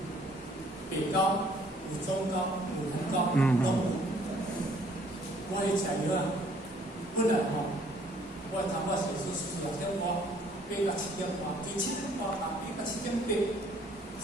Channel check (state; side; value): normal; both; correlation 0.61